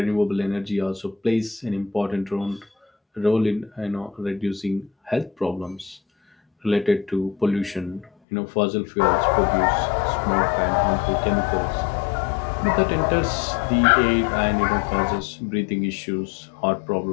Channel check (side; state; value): right; drops out; at 8.1 s